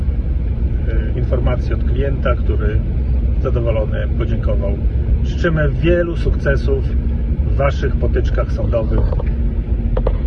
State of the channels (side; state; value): both; identical; correlation 1.00